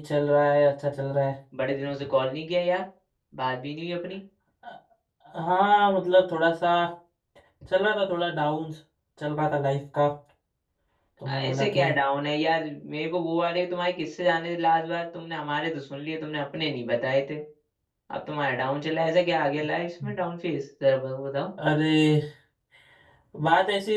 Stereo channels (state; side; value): identical; both; correlation 1.00